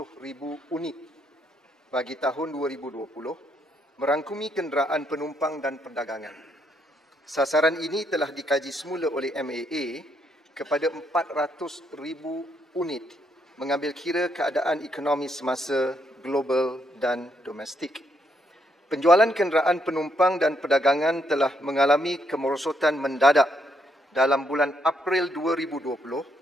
unit bagi tahun 2020, merangkumi kenderaan penumpang dan perdagangan. Sasaran ini telah dikaji semula oleh MAA kepada 400,000 unit, mengambil kira keadaan ekonomi semasa global dan domestik. Penjualan kenderaan penumpang dan perdagangan telah mengalami kemerosotan mendadak dalam bulan April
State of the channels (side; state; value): both; normal; correlation 0.75